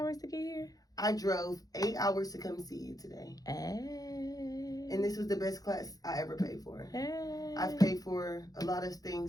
to get here? I drove 8 hours to come see you today. Hey. And this was the best class I ever paid for. Hey. I've paid for a lot of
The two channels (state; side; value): late; right; 0.18 ms